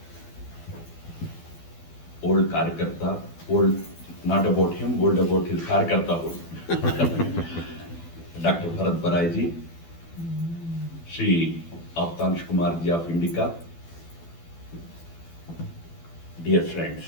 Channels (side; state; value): right; late; 12 ms